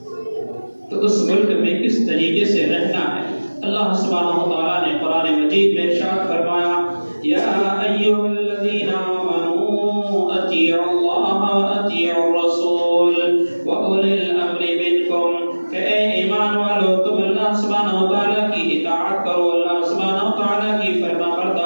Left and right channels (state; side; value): inverted; both; correlation -1.00